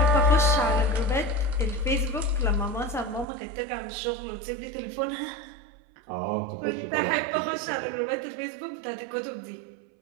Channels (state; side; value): drops out; left; at 3.2 s